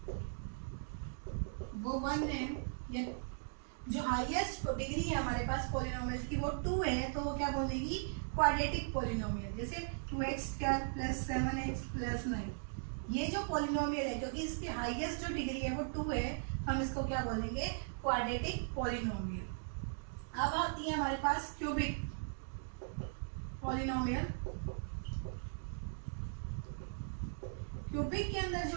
वो 1 है, या जो हाईएस्ट डिग्री है हमारे पास पॉलिनोमियल की वो 2 है, तो वो क्या बोलेगी क्वाड्रेटिक पॉलिनोमियल। जैसे 2x² + 7x + 9, ये जो पॉलिनोमियल है क्योंकि इसकी हाईएस्ट जो डिग्री है वो 2 है, हम इसको क्या बोलेंगे क्वाड्रेटिक पॉलिनोमियल। अब आती है हमारे पास क्यूबिक पॉलिनोमियल। क्यूबिक के अंदर जो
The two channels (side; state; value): left; silent; digital silence